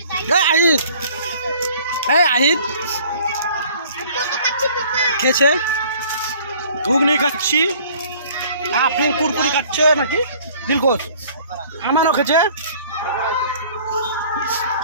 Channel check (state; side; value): inverted; both; correlation -0.53